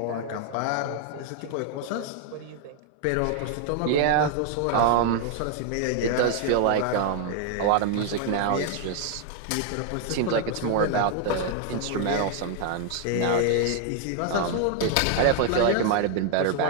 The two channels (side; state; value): both; different; correlation 0.00